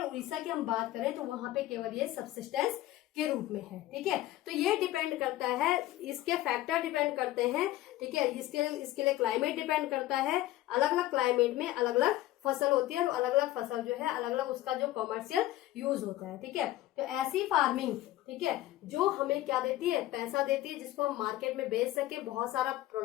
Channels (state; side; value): quieter; right; 15.4 dB